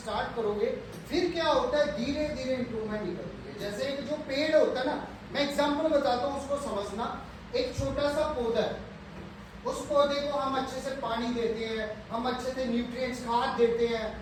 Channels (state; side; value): identical; both; correlation 1.00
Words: करोगे, फिर क्या होता है, धीरे धीरे इंप्रूवमेंट निकलती है। जैसे एक जो पेड़ होता है ना, मैं एग्जांपल बताता हूँ, उसको समझना। एक छोटा सा पौधा है, उस पौधे को हम अच्छे से पानी देते हैं, हम अच्छे से न्यूट्रिएंट्स खाद देते हैं,